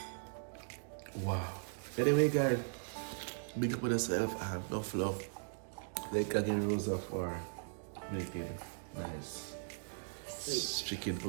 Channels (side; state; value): left; silent; digital silence